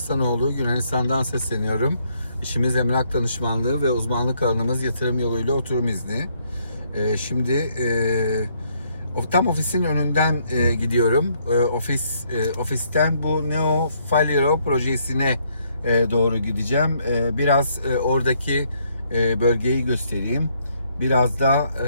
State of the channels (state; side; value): inverted; both; correlation -0.70